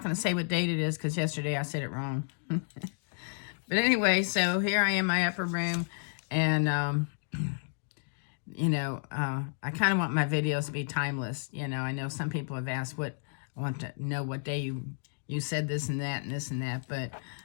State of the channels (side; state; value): right; silent; digital silence